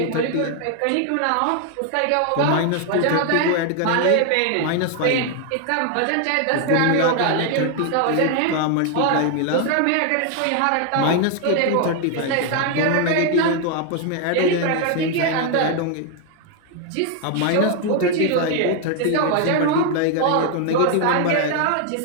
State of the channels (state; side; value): different; both; correlation 0.01